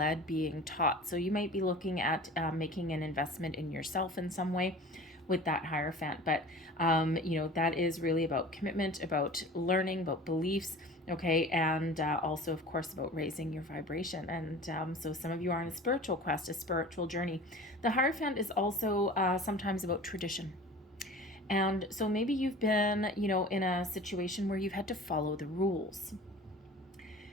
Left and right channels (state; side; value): normal; both; correlation 0.40